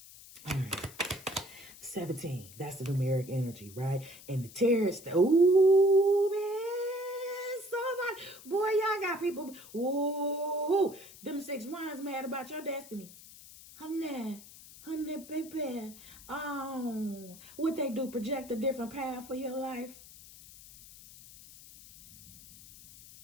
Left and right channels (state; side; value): noise; left; hiss, 19 dB below the sound